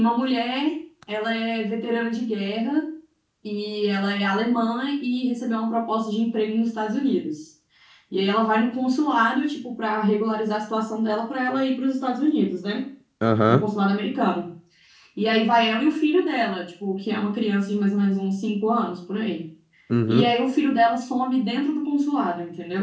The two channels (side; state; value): both; identical; correlation 1.00